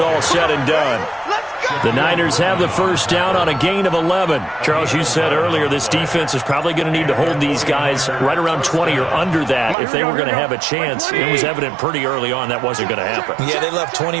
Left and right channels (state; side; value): drops out; left; at 9.8 s